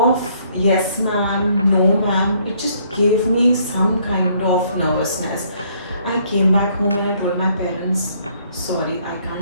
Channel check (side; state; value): both; inverted; correlation -0.65